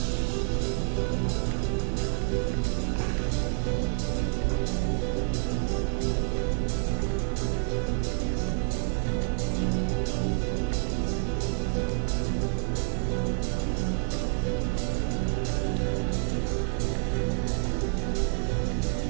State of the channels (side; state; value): left; silent; 59 dB below the other